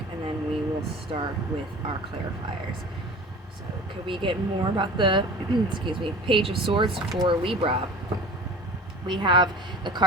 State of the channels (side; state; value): both; normal; correlation 0.40